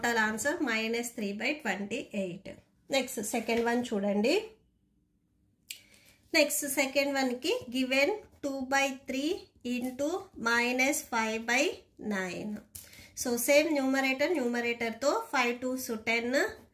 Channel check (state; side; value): identical; both; correlation 1.00